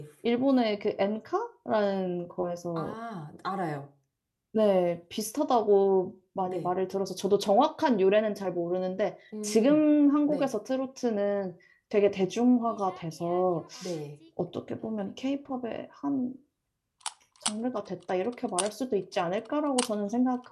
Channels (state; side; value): identical; both; correlation 1.00